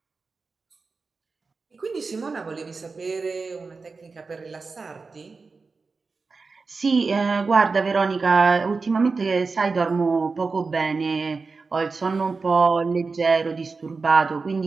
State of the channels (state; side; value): quieter; left; 4.3 dB